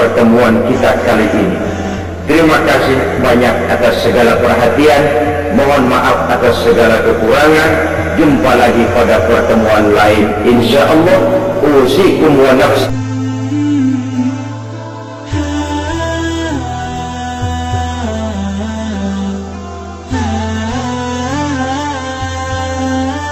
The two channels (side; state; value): both; identical; correlation 1.00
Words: kita kali ini. Terima kasih banyak atas segala perhatian. Mohon maaf atas segala kekurangan. Jumpa lagi pada pertemuan lain, insyaallah. Usikum wa nafsi.